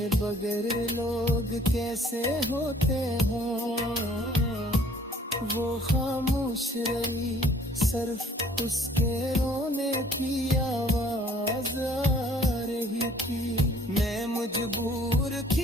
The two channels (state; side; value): normal; both; correlation 0.57